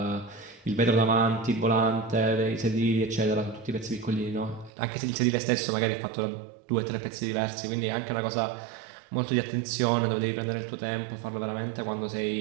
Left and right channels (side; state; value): left; drops out; at 4.7 s